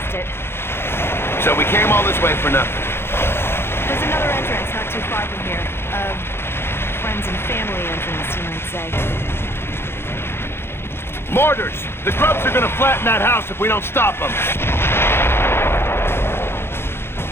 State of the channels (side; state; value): right; late; 0.11 ms